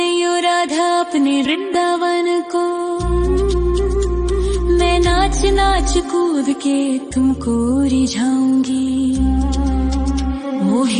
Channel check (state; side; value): identical; both; correlation 1.00